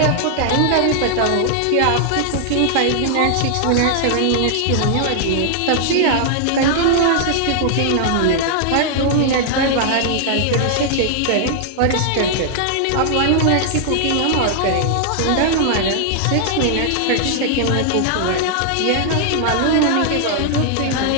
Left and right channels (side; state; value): both; different; correlation -0.01